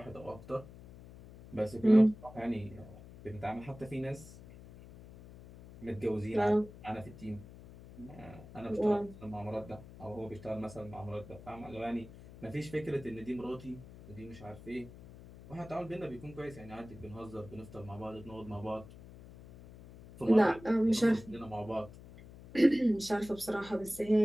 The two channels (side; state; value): left; noise; hum, 17 dB below the sound